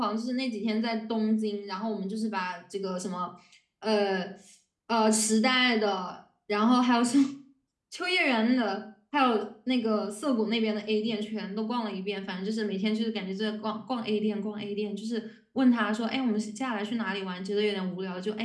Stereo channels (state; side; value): identical; both; correlation 1.00